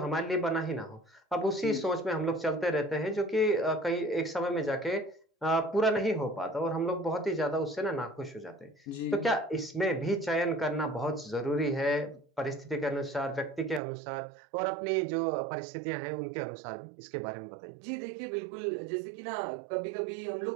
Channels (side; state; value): left; drops out; at 13.8 s